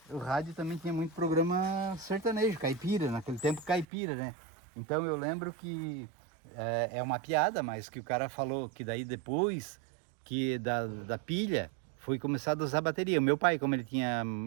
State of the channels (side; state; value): left; drops out; at 3.9 s